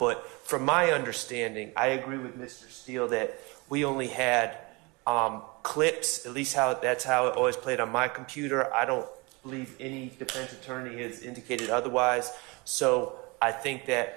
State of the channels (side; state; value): left; quieter; 27.0 dB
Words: from my understanding, I agree with Mr. Steele that we only had clips, at least that's how it always played on my computer. I don't believe any defense attorney has indicated otherwise. So I think